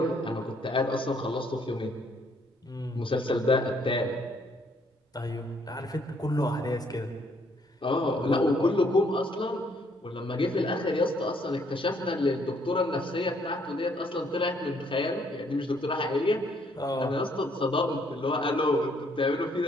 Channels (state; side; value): normal; both; correlation 0.67